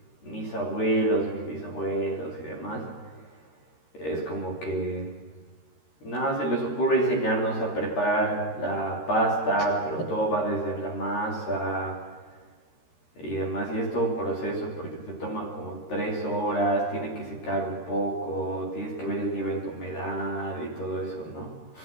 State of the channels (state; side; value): late; right; 13 ms